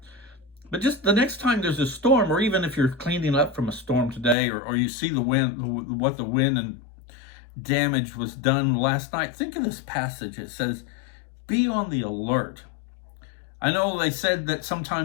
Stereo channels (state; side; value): drops out; right; at 4.4 s